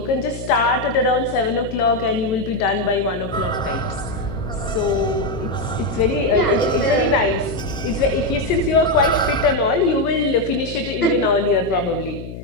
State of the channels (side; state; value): left; noise; hum, 11 dB below the sound